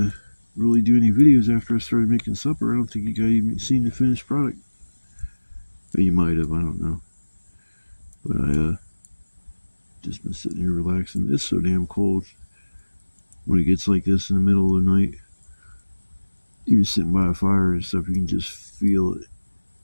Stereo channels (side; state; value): both; inverted; correlation -1.00